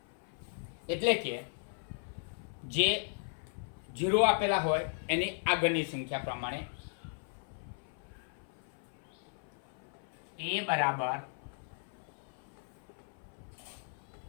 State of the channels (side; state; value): right; silent; 53 dB below the other